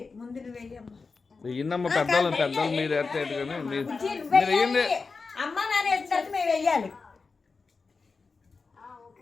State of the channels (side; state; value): right; quieter; 4.5 dB